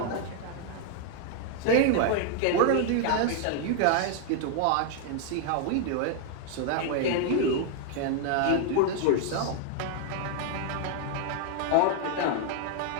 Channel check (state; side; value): different; both; correlation 0.00